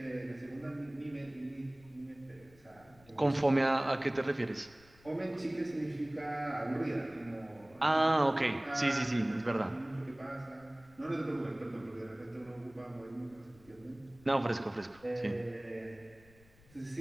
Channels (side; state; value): left; noise; rumble, 26 dB below the sound